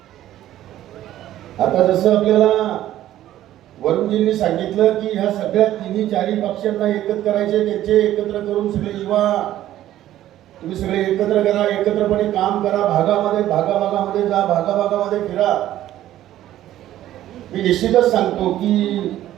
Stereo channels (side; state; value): left; quieter; 13.2 dB